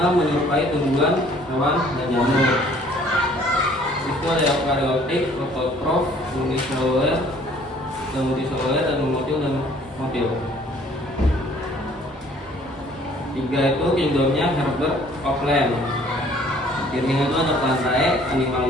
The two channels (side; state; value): both; normal; correlation 0.57